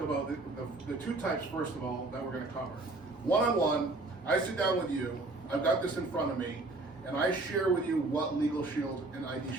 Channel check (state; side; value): quieter; left; 3.1 dB